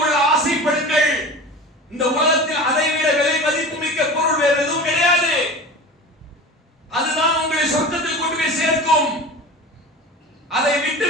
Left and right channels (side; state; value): both; normal; correlation 0.34